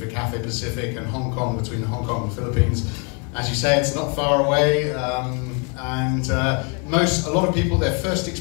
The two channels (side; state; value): right; quieter; 35.6 dB